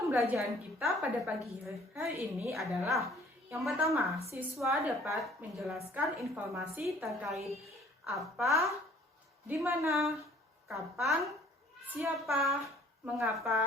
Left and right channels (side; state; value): both; normal; correlation 0.55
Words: kita pada pagi hari ini adalah yang pertama, siswa dapat menjelaskan informasi terkait apa, di mana, kapan, siapa,